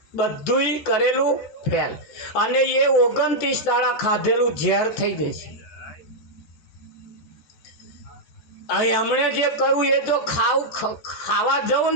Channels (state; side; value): late; right; 13 ms